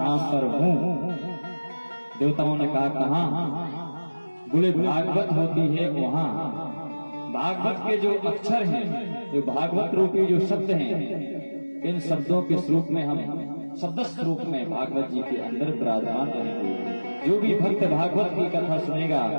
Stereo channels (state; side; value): inverted; both; correlation -1.00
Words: पर हूं। देवताओं ने कहा, कहां? बोले भागवत होती है वहां। भागवत के जो अक्षर हैं, जो भागवत रूपी जो शब्द हैं, इन शब्दों के स्वरूप में हम शब्द स्वरूप में भागवत जी के अंदर विराजमान रहेंगे। जो भी भक्त भागवत की कथा सुनेगा,